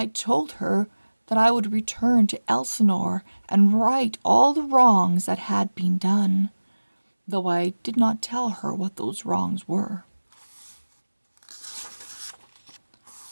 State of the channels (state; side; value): inverted; both; correlation -1.00